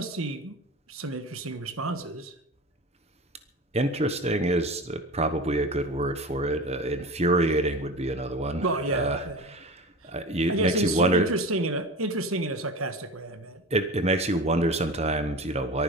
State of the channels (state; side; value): normal; both; correlation 0.31